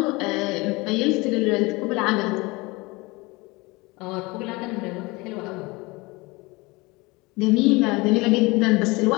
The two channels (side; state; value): right; quieter; 24.0 dB